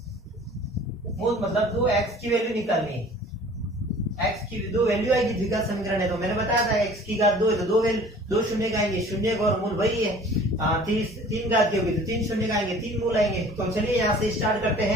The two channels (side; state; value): both; normal; correlation 0.48